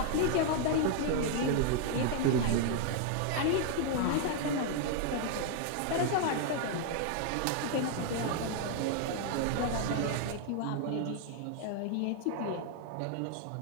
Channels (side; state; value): both; different; correlation 0.00